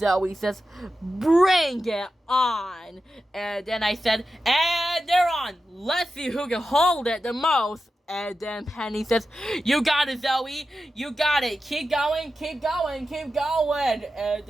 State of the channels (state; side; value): normal; both; correlation 0.91